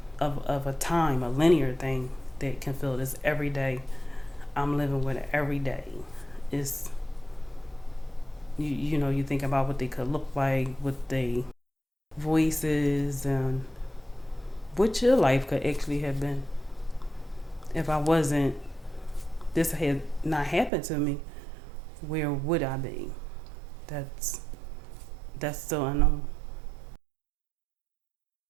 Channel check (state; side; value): drops out; left; at 20.7 s